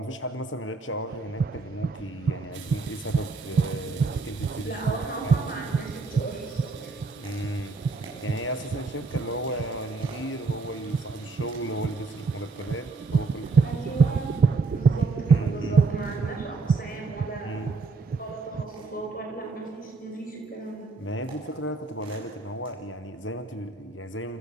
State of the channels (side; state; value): left; quieter; 4.1 dB